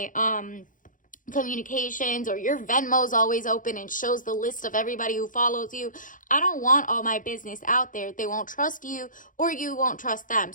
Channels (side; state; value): right; late; 0.38 ms